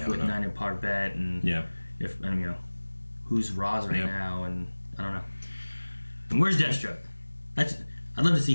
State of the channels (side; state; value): both; inverted; correlation -1.00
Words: with Nina Parbat and if and you know who's Roz right now, and I don't know. And where's Deathstroke? I'd love to see